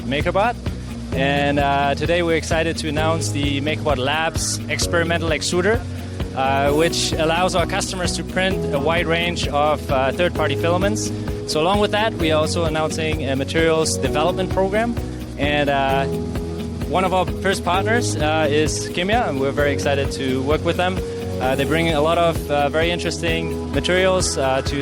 MakerBot. And today we're excited to announce the MakerBot Labs experimental extruder, which allows our customers to print a wide range of third-party filaments. So along with that, we are also announcing a materials development program. And one of our first partners is KIMYA, and we're very excited to work with them. They bring a lot of very interesting materials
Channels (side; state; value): both; identical; correlation 1.00